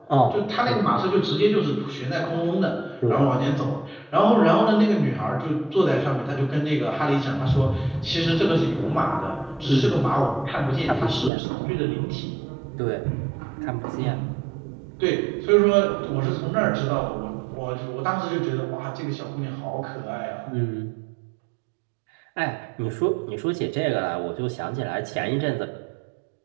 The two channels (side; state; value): left; drops out; at 11.3 s